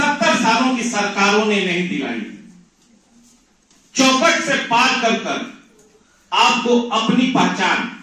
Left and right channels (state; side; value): identical; both; correlation 1.00